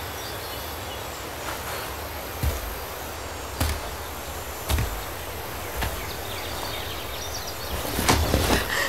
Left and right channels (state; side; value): identical; both; correlation 1.00